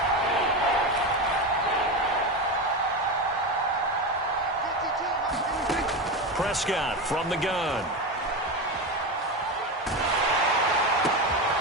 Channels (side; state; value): both; normal; correlation 0.19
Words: Prescott from the gun.